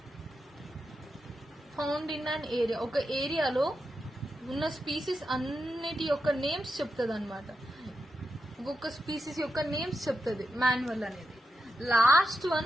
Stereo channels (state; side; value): normal; both; correlation 0.87